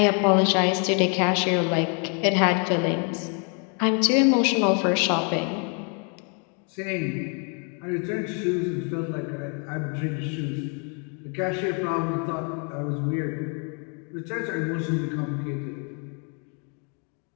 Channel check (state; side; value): quieter; right; 38.4 dB